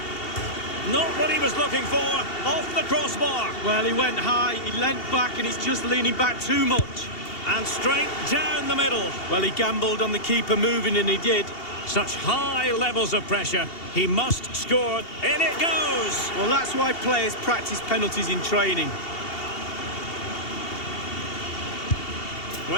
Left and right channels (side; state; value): right; late; 2.7 ms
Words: Not what he was looking for, off the crossbar. Well, he went high, he leant back, and he's just leaning back too much. And straight down the middle. Well, he gambled on the keeper moving, and he did. Such high levels of pressure. He must score. In it goes. Well, that's why players practice penalties in training.